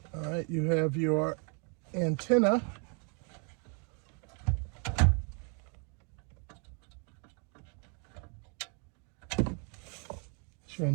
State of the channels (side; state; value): left; quieter; 37.9 dB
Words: All right, you have your antenna. It's your